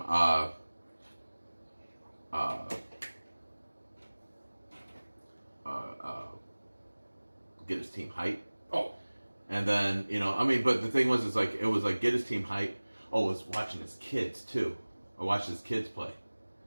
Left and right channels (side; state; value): both; inverted; correlation -1.00